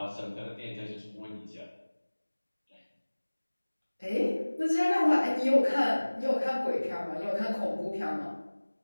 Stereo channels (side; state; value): both; inverted; correlation -1.00